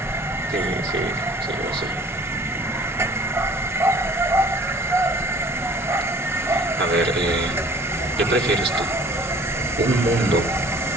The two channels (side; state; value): both; normal; correlation 0.51